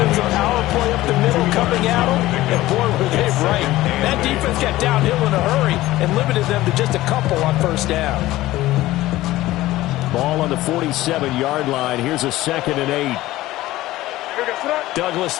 was a power play up the middle coming at them, and boy, were they right. That defense got downhill in a hurry and limited them to just a couple on 1st down. Ball on the 47-yard line. Here's a 2nd and 8. Douglas,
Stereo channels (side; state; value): right; quieter; 16.7 dB